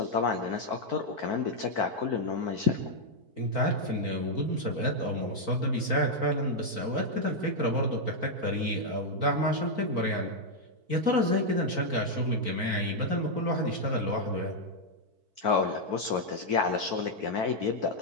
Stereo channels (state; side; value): late; left; 4.5 ms